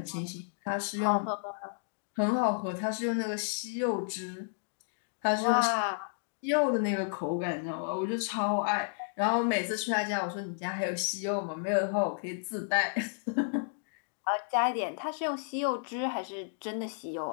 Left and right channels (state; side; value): silent; right; digital silence